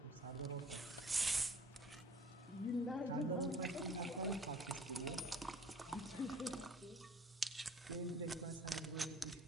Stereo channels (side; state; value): both; normal; correlation 0.50